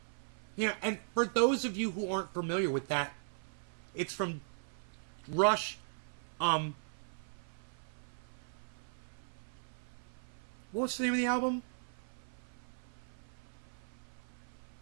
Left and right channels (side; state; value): left; silent; 52 dB below the other